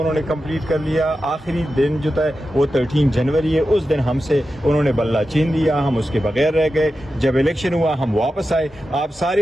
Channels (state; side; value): normal; both; correlation 0.91